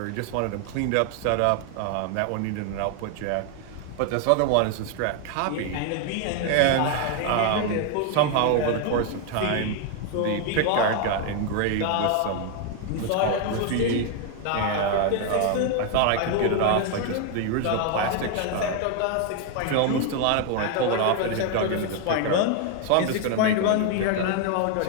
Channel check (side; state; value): both; different; correlation 0.01